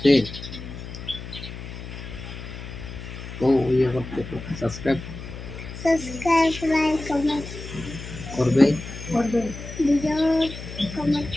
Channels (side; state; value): left; noise; hum, 11 dB below the sound